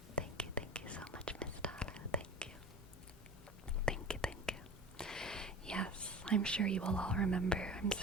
Thank you so much, Miss Tala. Thank you. Thank you. Yes, I'm sure you will all remember.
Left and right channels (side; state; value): both; normal; correlation 0.35